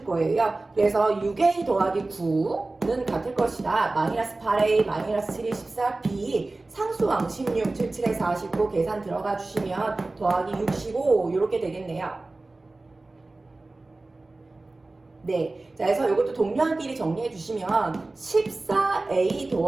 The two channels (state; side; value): quieter; left; 3.1 dB